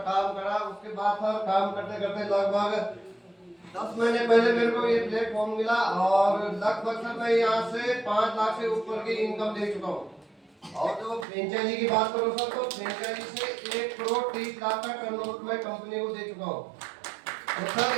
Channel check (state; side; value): drops out; left; at 11.2 s